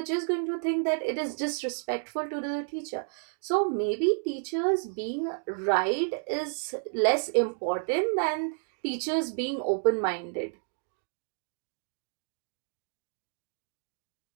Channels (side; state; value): left; silent; digital silence